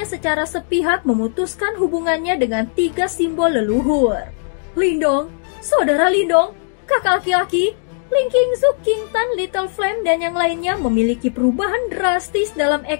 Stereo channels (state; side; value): silent; right; digital silence